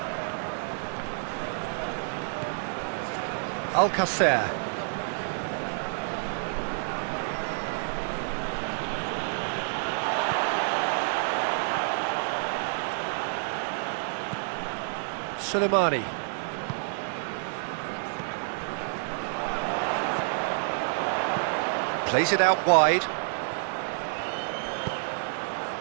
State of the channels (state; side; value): silent; left; 59 dB below the other